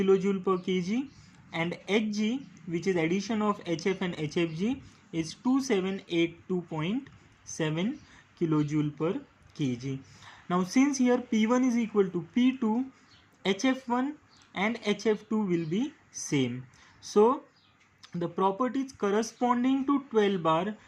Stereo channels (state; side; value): identical; both; correlation 1.00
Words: per kg, and Hg, which is addition of HF and HFG, is 2782.7 kilojoule per kg. Now since here P1 is equal to P2, HF1 and HF2 will be same. So the properties corresponding to 12 bar